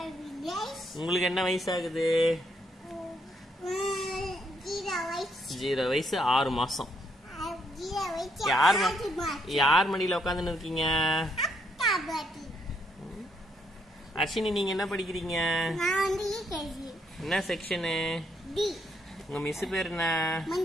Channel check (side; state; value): both; normal; correlation 0.73